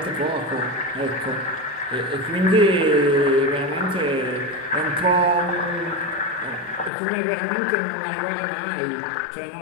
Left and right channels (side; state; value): right; drops out; at 6.9 s